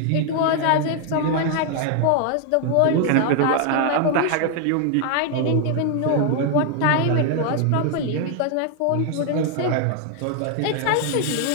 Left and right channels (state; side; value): different; both; correlation 0.00